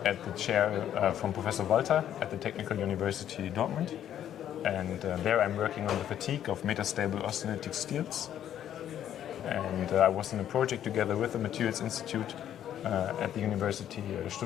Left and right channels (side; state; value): right; quieter; 10.6 dB